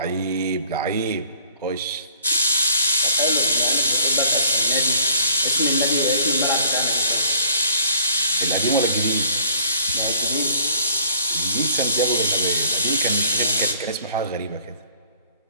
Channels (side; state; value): both; inverted; correlation -0.56